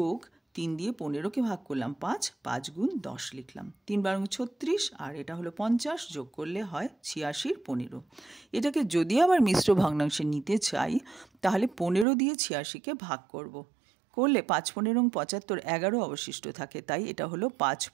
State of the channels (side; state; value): left; drops out; at 12.1 s